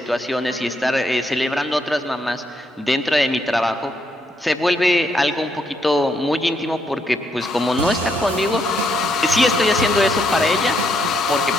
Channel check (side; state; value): both; normal; correlation 0.75